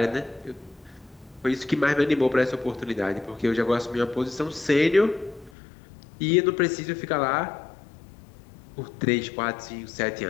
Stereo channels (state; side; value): drops out; right; at 5.5 s